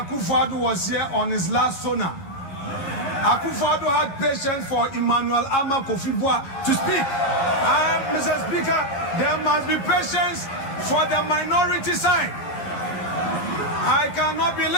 was here on his last sonar, Akufo-Addo had patience for Emmanuel Ama Kofi-Boa to speak. Mr. Speaker, there must be patience for the minority side. I cannot be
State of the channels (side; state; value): right; late; 11 ms